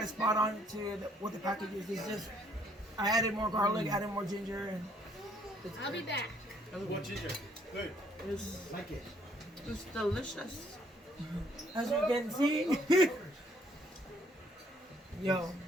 it spot on to what the package is. It's just I added more garlic, added more ginger, and I'll be back. What ginger? Good. it's, Like it. it's delicious. As you can see. Yo.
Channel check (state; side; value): normal; both; correlation 0.65